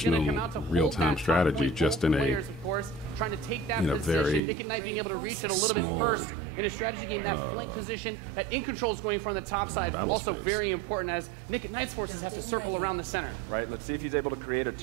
going to traditional come out to hold real-time that top strategy, point. just Both in a players, of course, trying to take that in a position. very Nick at Night being able to reach it a little small, bit first in a strategy game. That flank position that In Control is going from the top side, but battle also space. very important as Nick at Night's forces have to circle around the center. Right, let's see if he's able to create a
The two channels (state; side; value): drops out; left; at 4.4 s